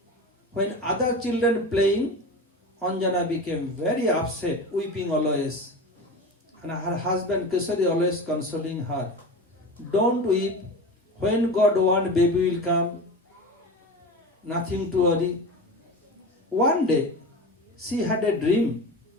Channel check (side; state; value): both; normal; correlation 0.29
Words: When other children playing, Anjana became very upset, weeping always. And her husband Kesari always consoling her. Don't weep. When God wants, baby will come. Nothing to worry. One day, she had a dream